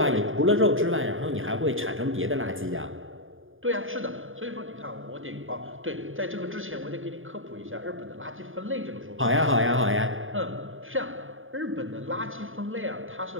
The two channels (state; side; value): late; left; 0.59 ms